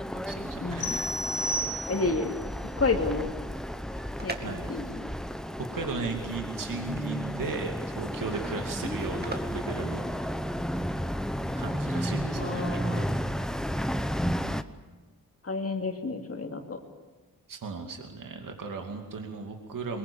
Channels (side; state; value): both; normal; correlation 0.51